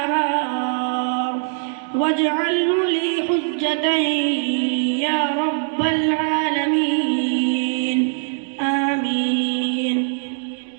واجعله لي حجة يا رب العالمين. آمين.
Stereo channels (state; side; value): silent; left; 65 dB below the other